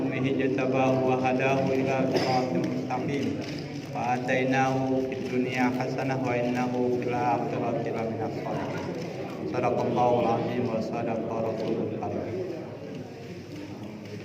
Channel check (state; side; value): identical; both; correlation 1.00